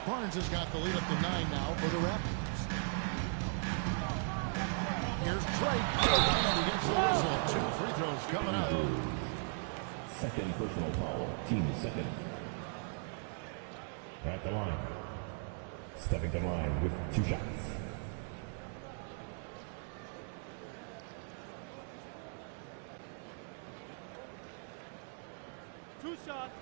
Barnes has got the lead up to 9 now for the Raptors. Here's Drake. And he gets the whistle. 2 free throws coming up. Second personal foul. Team second. At the line. Stepping to the line with 2 shots. Two shots.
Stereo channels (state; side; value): silent; left; 53 dB below the other